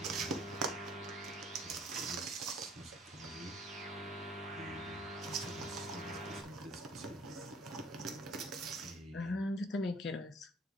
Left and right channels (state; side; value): normal; both; correlation 0.55